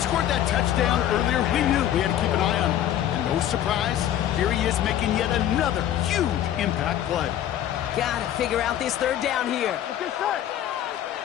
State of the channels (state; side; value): quieter; right; 11.2 dB